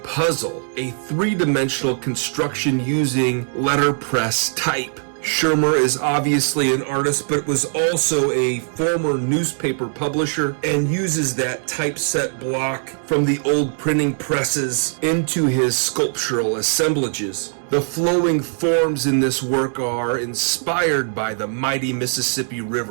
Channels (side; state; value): left; silent; digital silence